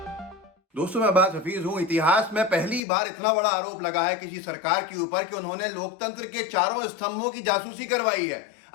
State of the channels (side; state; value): right; drops out; at 2.8 s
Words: दोस्तों, मैं अब्बास हफीज हूं। इतिहास में पहली बार इतना बड़ा आरोप लगा है किसी सरकार के ऊपर कि उन्होंने लोकतंत्र के चारों स्तंभों की जासूसी करवाई है।